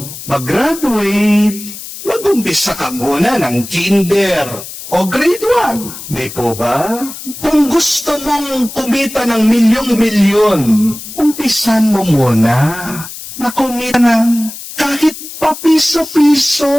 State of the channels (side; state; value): left; noise; hiss, 12 dB below the sound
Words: mag-graduate, mag-umpisa ka muna ng kinder o grade 1. Di po ba? Kung gusto mong kumita ng milyong-milyon, umpisan mo muna na kumita ng kahit papiso-piso.